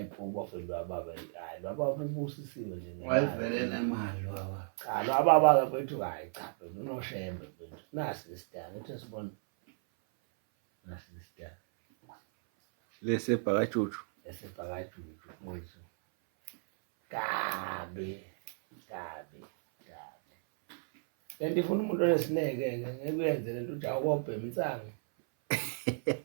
bafethu ababa. Hayi baba ubusisiwe nje. Wayivele nemali baba. Cha lo ababa bafethu hayi cha phela unoshembe phela. Nasi isidanga uthi sibona. Nasi isidanga. Lesebhakajuju. Esebhakajuju mfowethu. Kabe. Lento ifuna umuntu onesineke ngeke uyenze lento uthi awubhema insango.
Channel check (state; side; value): silent; left; 55 dB below the other